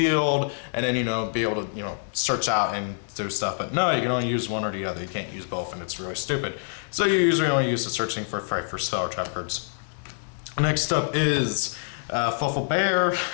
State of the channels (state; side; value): silent; right; 61 dB below the other